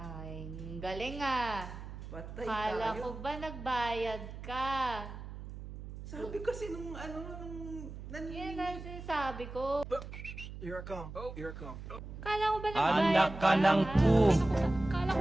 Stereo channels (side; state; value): right; noise; hum, 11 dB below the sound